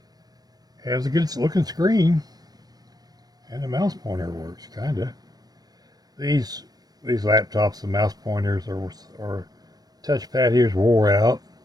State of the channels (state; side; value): late; left; 0.19 ms